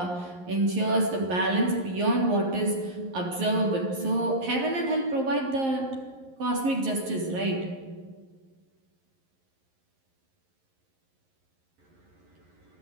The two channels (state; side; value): late; left; 11 ms